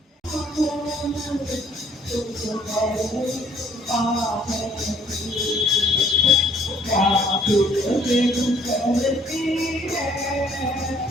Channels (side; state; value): both; normal; correlation 0.61